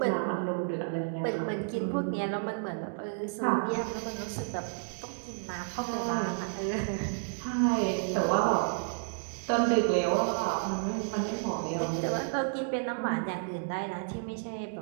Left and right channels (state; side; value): silent; left; digital silence